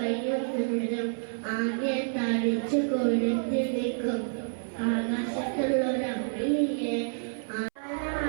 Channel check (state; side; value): silent; left; 59 dB below the other